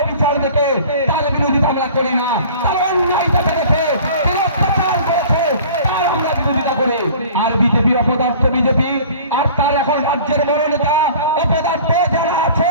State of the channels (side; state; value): both; inverted; correlation -0.45